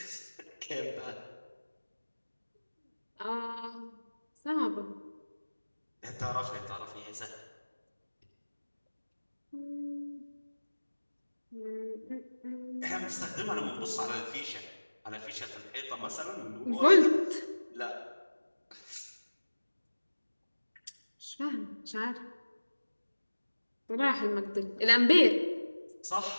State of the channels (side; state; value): both; inverted; correlation -1.00